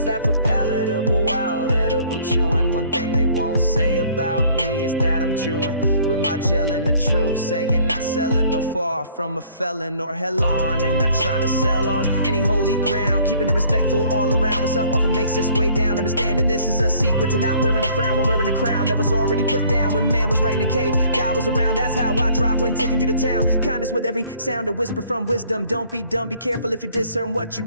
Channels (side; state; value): both; inverted; correlation -0.57